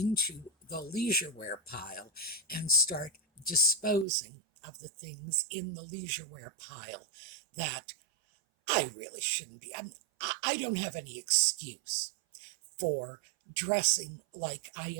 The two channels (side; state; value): left; drops out; at 4.0 s